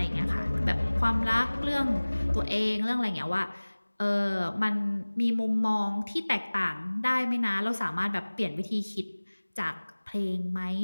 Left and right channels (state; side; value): inverted; both; correlation -1.00